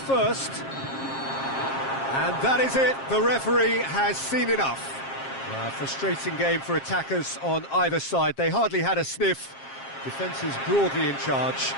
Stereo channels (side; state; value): right; late; 7.5 ms